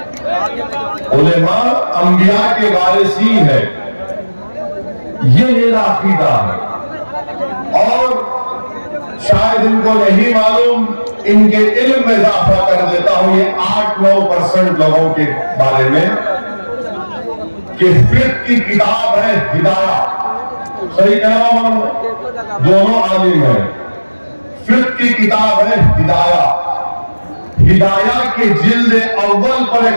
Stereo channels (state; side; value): inverted; both; correlation -1.00